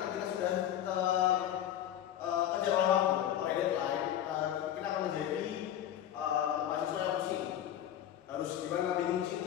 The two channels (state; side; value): quieter; right; 11.1 dB